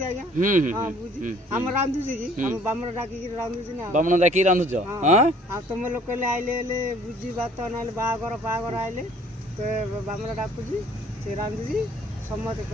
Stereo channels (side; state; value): both; normal; correlation 0.56